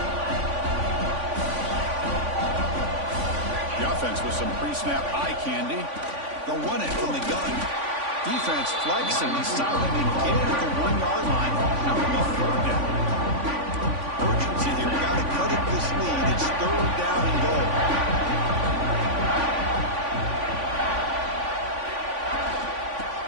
The offense with some pre-snap eye candy. They'll run it from the gun. Defense flexing. He's silently get at the 1-yard line. Now it'll be 4th down. Urgency here. We got to cut up this lead. It's 3rd down and goal.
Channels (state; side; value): late; left; 3.5 ms